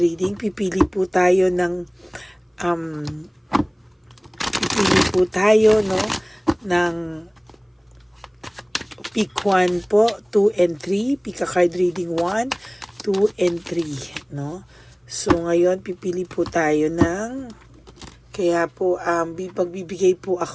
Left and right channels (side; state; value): both; identical; correlation 1.00